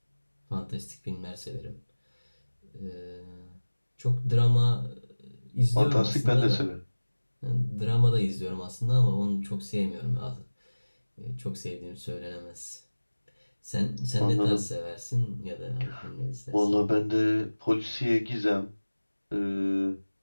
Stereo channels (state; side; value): inverted; both; correlation -1.00